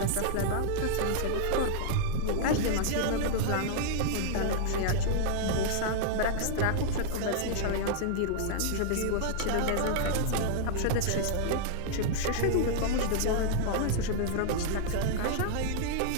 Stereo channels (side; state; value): both; different; correlation -0.01